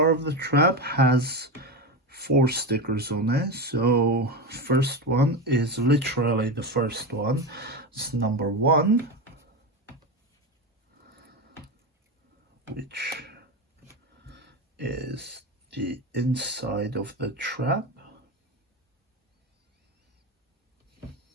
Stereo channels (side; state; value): both; normal; correlation 0.18